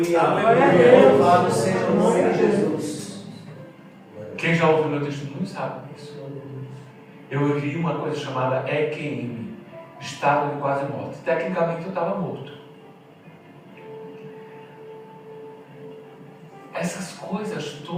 Aleluia. Louvado seja o nome de Jesus. Quem já ouviu meu testemunho sabe disso. Eu vivi uma coisa chamada EQM, estado de quase morte. Tecnicamente eu estava morto. essas coisas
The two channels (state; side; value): identical; both; correlation 1.00